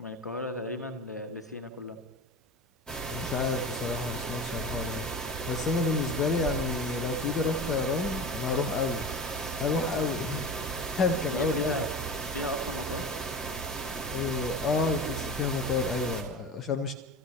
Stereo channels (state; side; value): normal; both; correlation 0.30